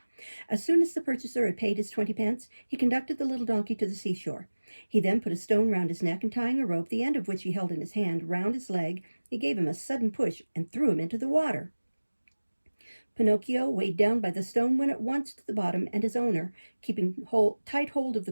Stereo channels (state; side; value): inverted; both; correlation -1.00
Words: As soon as the purchaser had paid his 20 pence, he conducted the little donkey to the seashore. He then put a stone round his neck and, tying a rope, the end of which he held in his hand, round his leg, he gave him a sudden push and threw him into the water. Pinocchio, weighed down by the stone, went at once to the bottom, and his owner, keeping tight hold of the